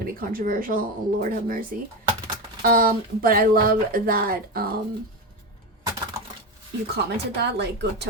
be controversial. Oh, Lord have mercy. But I love that you commented that, like, go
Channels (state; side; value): normal; both; correlation 0.17